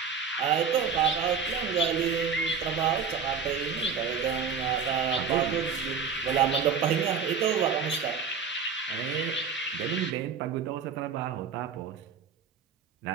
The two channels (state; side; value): quieter; left; 6.0 dB